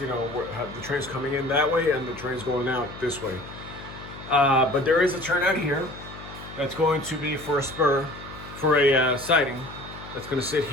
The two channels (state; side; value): noise; left; hum, 15 dB below the sound